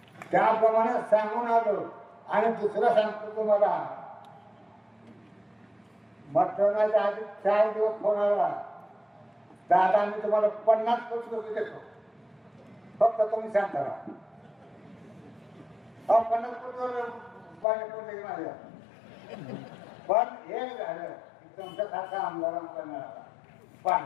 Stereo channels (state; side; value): drops out; right; at 17.7 s